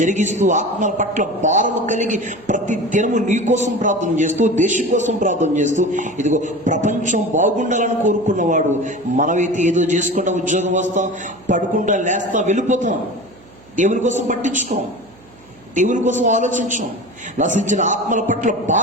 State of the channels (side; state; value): right; noise; hum, 26 dB below the sound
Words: ఆత్మల పట్ల భారము కలిగి ప్రతి దినము నీ కోసం ప్రార్థన చేస్తూ, దేశం కోసం ప్రార్థన చేస్తూ, ఇదిగో ప్రపంచం బాగుండాలని కోరుకున్నవాడు. మనమైతే ఏదో చేసుకుంటా ఉద్యోగం వస్తాం, పడుకుంటా లేస్తాం, వెళ్ళిపోతాం. దేవుని కోసం పట్టించుకోం, దేవుని కోసం ఆలోచించాం. నశించిన ఆత్మల పట్ల